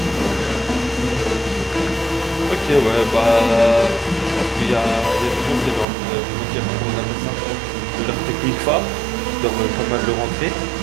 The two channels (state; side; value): drops out; left; at 5.9 s